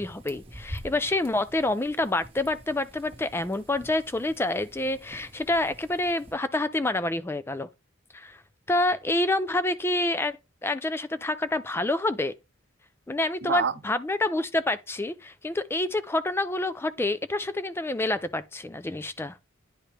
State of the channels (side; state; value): both; normal; correlation 0.54